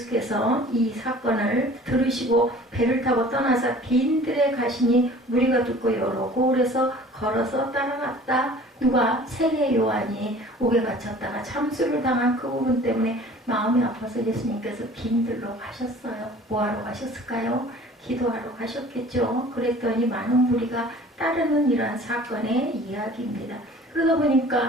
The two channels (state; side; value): normal; both; correlation 0.47